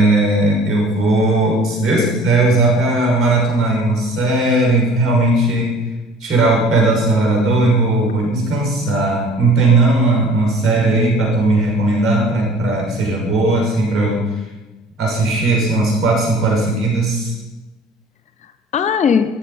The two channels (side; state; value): both; normal; correlation 0.48